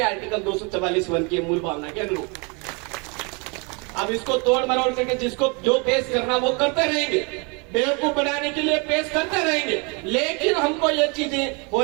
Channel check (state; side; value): quieter; left; 32.0 dB